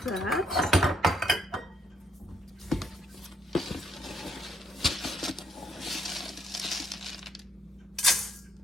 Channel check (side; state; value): both; normal; correlation 0.72